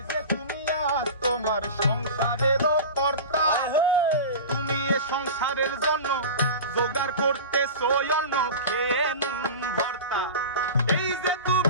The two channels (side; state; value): both; inverted; correlation -0.30